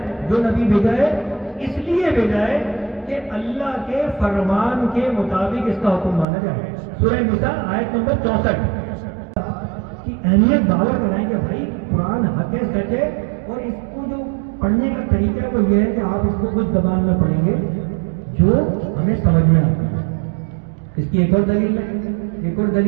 جو نبی بھیجا ہے, اس لیے بھیجا ہے کہ اللہ کے فرمان کے مطابق اس کا حکم مانا جائے. سورہ نساء آیت نمبر 64 کی اہمیت باور کرائیں کہ بھائی قرآن حق ہے, سچ ہے, اور اس کو جو پڑھنے کا طریقہ وہ یہ ہے کہ آپ اس کو کچھ زبان میں پڑھیں گے جو ہمیں سمجھ میں آتا ہے. اس کی ایک اور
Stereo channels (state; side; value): drops out; left; at 6.2 s